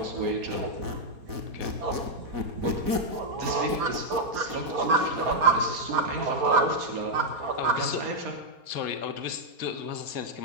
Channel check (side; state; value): left; late; 4.1 ms